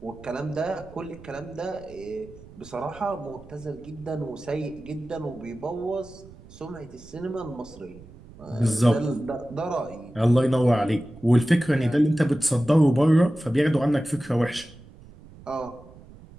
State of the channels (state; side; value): noise; right; rumble, 20 dB below the sound